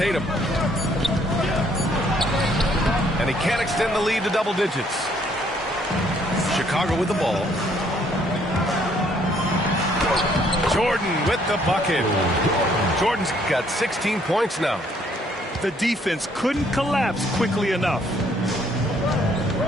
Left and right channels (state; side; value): normal; both; correlation 0.65